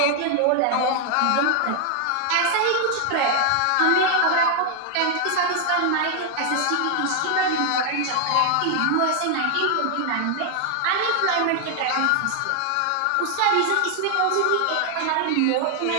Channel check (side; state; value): both; different; correlation 0.00